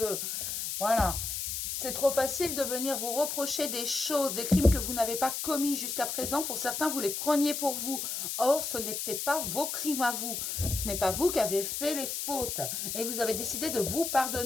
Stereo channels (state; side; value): noise; left; hiss, 3 dB below the sound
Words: Voilà. C'est trop facile de venir vous reprocher des choses, des crimes que vous n'avez pas commis jusqu'à présent. Pour certains, vous les preniez pour vous. Or, ce n'était pas vos crimes à vous. Ce n'est pas vous qui avez fait les fautes. Et vous avez décidé de vous